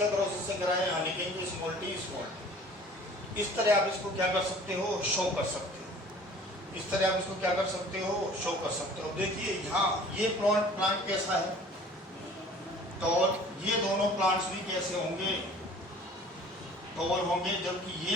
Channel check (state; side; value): normal; both; correlation 0.48